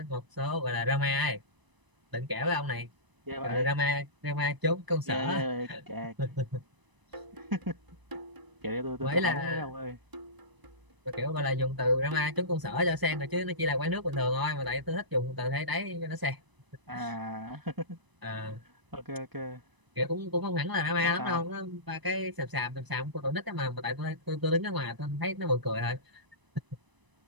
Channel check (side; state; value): left; late; 1.0 ms